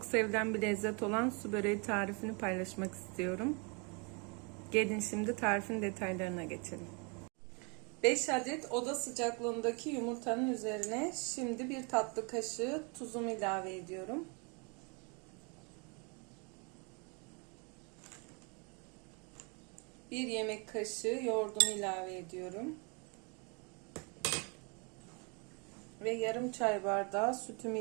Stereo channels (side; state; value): left; quieter; 33.5 dB